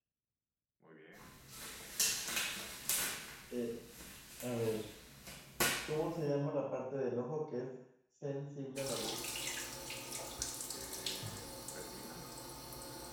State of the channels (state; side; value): identical; both; correlation 1.00